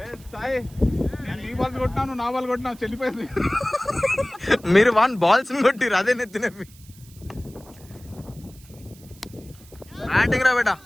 నీ బాల్ కొట్టినాను, నా బాల్ కొట్టినా, చెల్లిపోయింది. మీరు 1 balls కొట్టిరు, అదే నెత్తినవి. బ్యాటింగ్ రా బేటా.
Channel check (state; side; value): noise; right; hiss, 24 dB below the sound